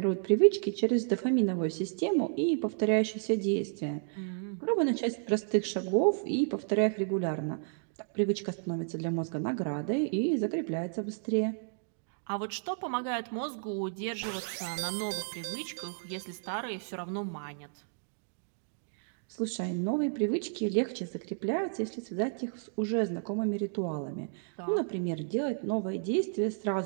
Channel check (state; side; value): silent; left; digital silence